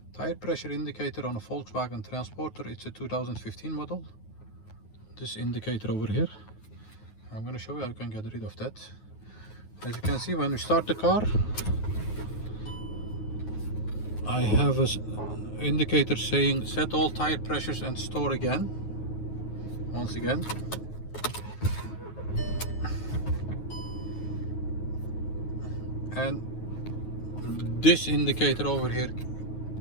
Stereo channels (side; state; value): right; late; 9.4 ms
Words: tire pressure indicator on a Volkswagen Transporter. It's a 2015 model. This indicator over here. I'm going to show you how you can get rid of that. As you can see, when we start the car, I have an indicator saying set all tire pressures and store again. Once again. And this indicator over here